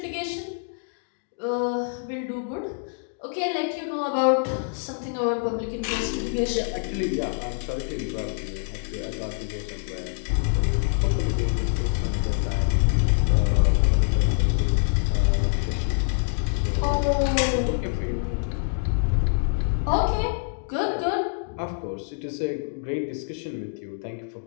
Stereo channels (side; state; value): right; silent; digital silence